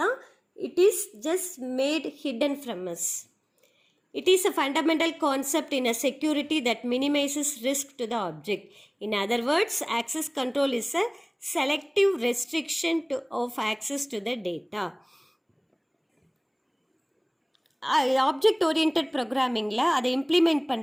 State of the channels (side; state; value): both; identical; correlation 1.00